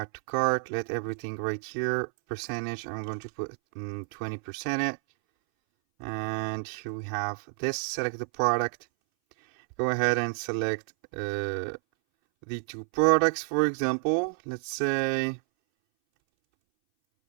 to cart, let everything right here, percentage, I'm going to put 20%, and here we have this, select the product, go ahead and select the two products. For example, let's say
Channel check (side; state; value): left; silent; 58 dB below the other